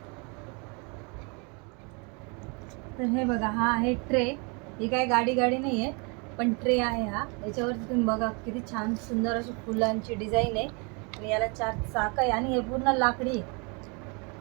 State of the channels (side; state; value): left; quieter; 32.7 dB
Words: तर हे बघा, हा आहे ट्रे. ही काय गाडी नाही आहे, पण ट्रे आहे हा. याच्यावरती तुम्ही बघा किती छान सुंदर अशी फुलांची डिझाईन आहे आणि याला 4 चाक आहे आणि हे पूर्ण लाकडी आहे.